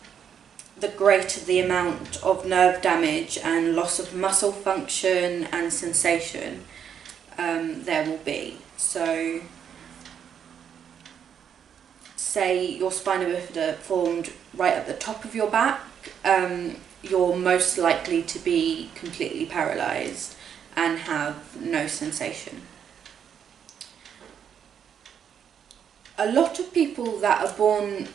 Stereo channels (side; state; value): left; quieter; 8.2 dB